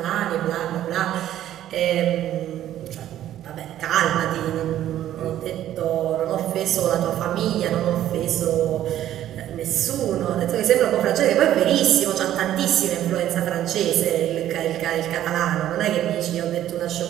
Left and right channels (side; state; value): left; quieter; 12.2 dB